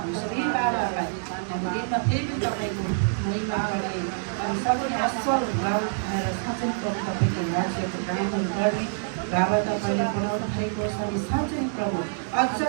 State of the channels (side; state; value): left; silent; digital silence